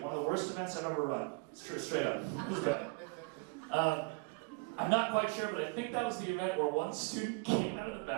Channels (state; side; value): quieter; left; 31.0 dB